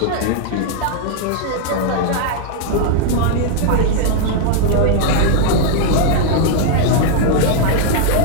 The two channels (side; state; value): both; different; correlation 0.00